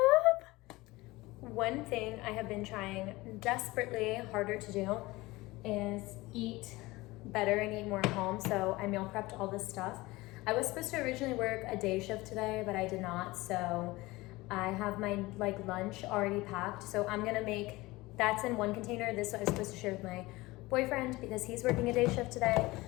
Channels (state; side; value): quieter; right; 20.6 dB